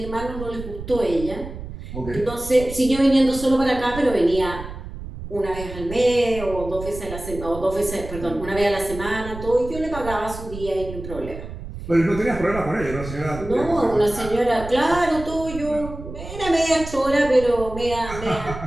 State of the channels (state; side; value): noise; right; rumble, 11 dB below the sound